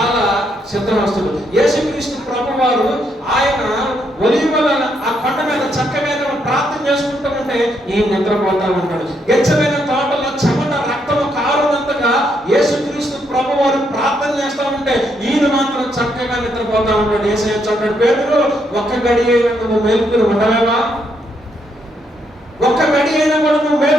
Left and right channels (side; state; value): both; normal; correlation 0.76